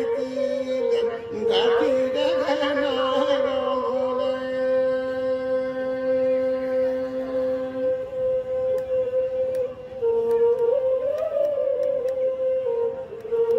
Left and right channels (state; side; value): identical; both; correlation 1.00